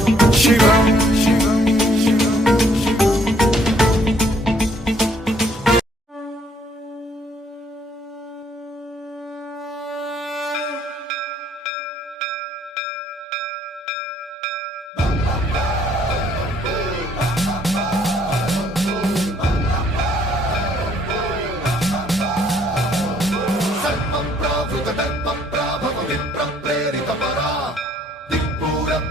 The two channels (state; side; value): normal; both; correlation 0.65